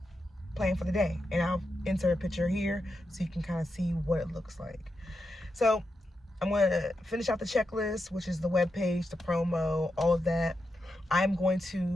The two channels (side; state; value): both; normal; correlation 0.87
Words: planned for the day. And I'll insert a picture here so you can kind of see what it looks like. So I'm going to finish out the checklist, which is the webpage, the promo, all of that. I'm going